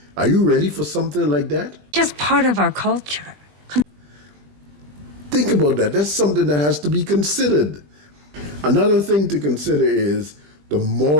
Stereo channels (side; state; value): left; late; 20 ms